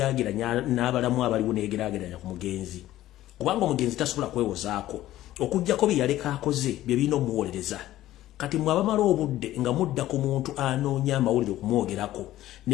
n'abalamu abaliwo neyegeraageranya ku mugenzi kubanga omugenzi tasobola kwewozaako okuggyako bye yaleka akoze bye birina omuwolereza. Kati mwabamala obudde nga mudda ku muntu anoonya amawulire okumwogerako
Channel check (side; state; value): right; quieter; 14.5 dB